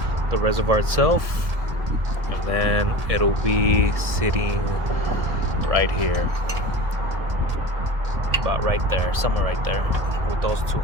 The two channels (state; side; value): late; left; 1.7 ms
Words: the reservoir itself, and then it'll be sitting right here, about right there, somewhere right there, with those two